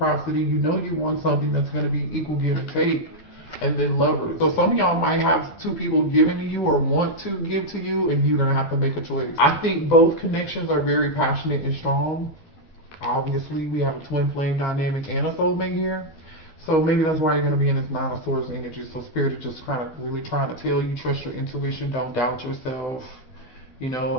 You know you want something that's going to be equal give and take. And then Lovers. So some of y'all might have two people giving to you or want to give to you, and you're going to have to make a choice. I think both connections are very passionate and strong. Obviously, we have a twin flame dynamic and a soulmate here. So maybe that's why you're going to be in this Nine of Swords energy. So Spirit is just kind of really trying to tell you, trust your intuition, don't doubt yourself. You know,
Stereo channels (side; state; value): right; late; 12 ms